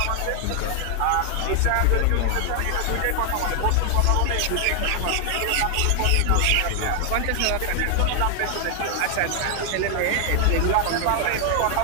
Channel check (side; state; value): both; different; correlation 0.00